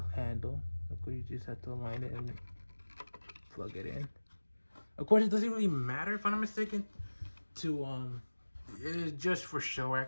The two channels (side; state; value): both; inverted; correlation -1.00